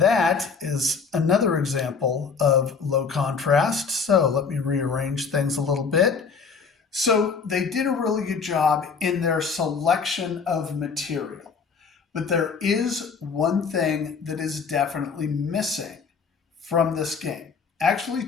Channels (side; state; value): right; quieter; 5.5 dB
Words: is another example of low contrast. So let me rearrange things a little bit. So they did a really good job in their selection of material. But there is one thing that is definitely missing from this game.